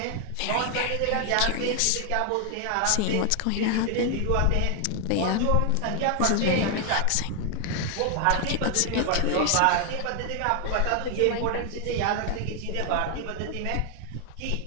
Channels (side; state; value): both; different; correlation 0.00